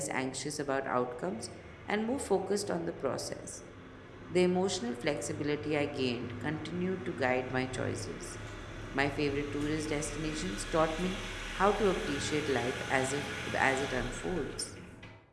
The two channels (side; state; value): both; identical; correlation 1.00